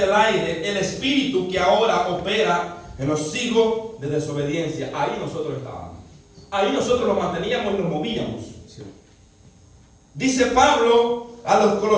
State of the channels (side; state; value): both; identical; correlation 1.00